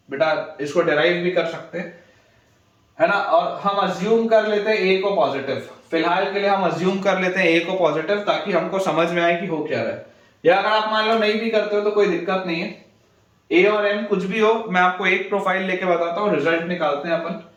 बेटा इसको डिराइव भी कर सकते हैं, है ना। और हम अज्यूम कर लेते हैं a को पॉजिटिव, फिलहाल के लिए हम अज्यूम कर लेते हैं a को पॉजिटिव ताकि हमको समझ में आए कि हो क्या रहा है। या अगर आप मान लो नहीं भी करते हो तो कोई दिक्कत नहीं है, a और m कुछ भी हो, मैं आपको एक प्रोफाइल लेके बताता हूँ, रिजल्ट निकालते हैं अपन।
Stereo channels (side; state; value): both; identical; correlation 1.00